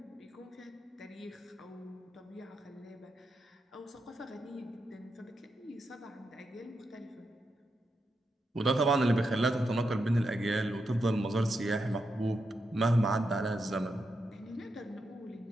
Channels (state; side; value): normal; both; correlation 0.85